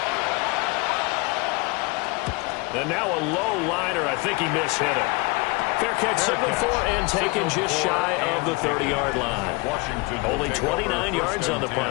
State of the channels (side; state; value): right; quieter; 26.1 dB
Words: And now a low liner. I think he mishit it. Fair catch signal for and taken just shy of the 30-yard line. Only 29 yards on the